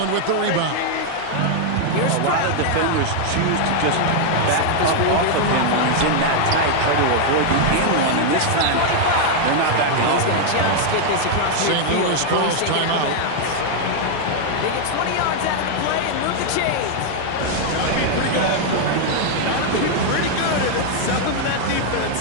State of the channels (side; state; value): both; different; correlation 0.00